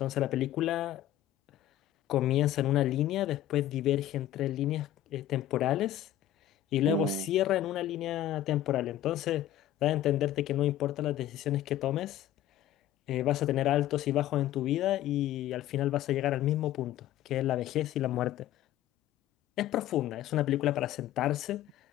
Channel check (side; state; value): right; quieter; 12.4 dB